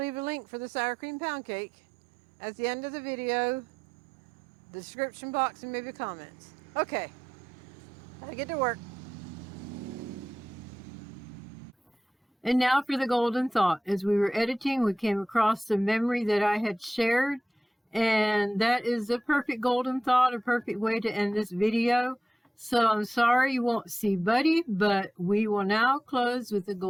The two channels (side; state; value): both; normal; correlation 0.91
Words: a link for the sour cream pound cake at the end of the video, the description box, and maybe comments. Okay, I get to work. And now for the golden thought. As we were editing, we came across the memory that I had shared, and that is the perfect golden thought, a perfect way to end this video. So I'm sorry you won't see Buddy, but we will now close with the